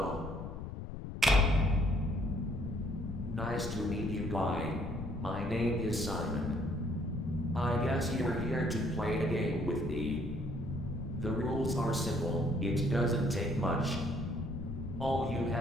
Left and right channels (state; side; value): noise; left; rumble, 7 dB below the sound